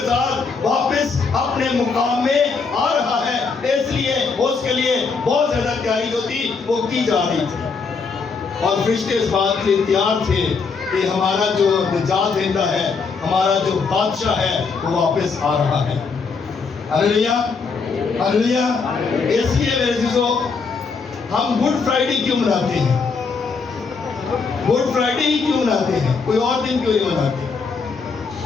ساتھ واپس اپنے مقام میں آ رہا ہے، اس لیے اس کے لیے بہت زیادہ تیاری جو تھی وہ کی جا رہی تھی، اور فرشتے اس بات کے لیے تیار تھے کہ ہمارا جو نجات دہندہ ہے، ہمارا جو بادشاہ ہے وہ واپس آ رہا ہے۔ ہلیلویا ہلیلویا۔ اس لیے میرے عزیزو ہم گڈ فرائیڈے کیوں مناتے ہیں؟ گڈ فرائیڈے ہی کیوں مناتے ہیں؟ کوئی اور دن کیوں نہیں مناتے؟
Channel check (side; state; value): right; quieter; 4.9 dB